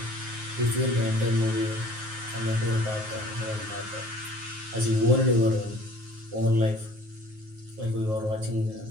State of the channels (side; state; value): left; late; 9.4 ms